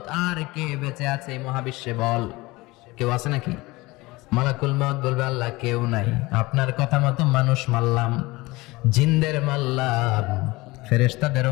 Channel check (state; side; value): quieter; right; 21.7 dB